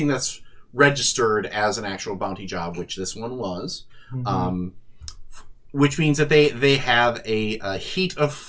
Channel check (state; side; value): identical; both; correlation 1.00